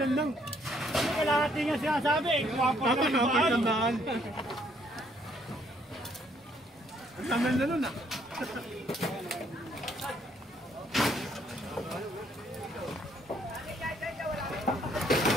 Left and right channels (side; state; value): both; normal; correlation 0.67